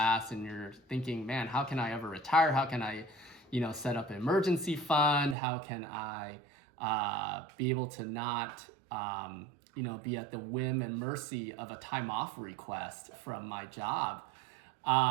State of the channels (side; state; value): left; drops out; at 5.4 s